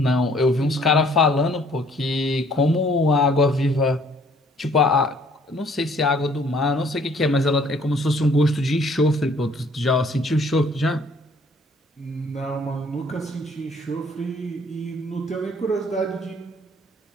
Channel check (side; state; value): both; normal; correlation 0.60